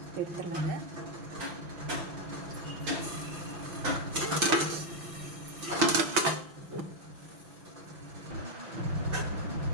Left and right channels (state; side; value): late; left; 6.0 ms